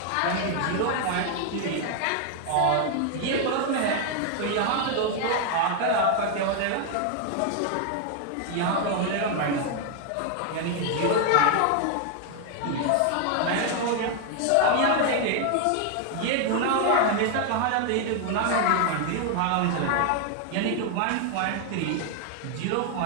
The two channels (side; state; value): both; different; correlation 0.00